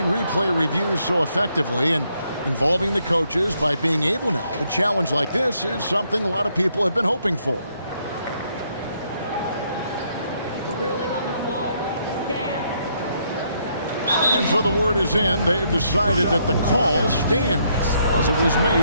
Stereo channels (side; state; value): both; inverted; correlation -0.73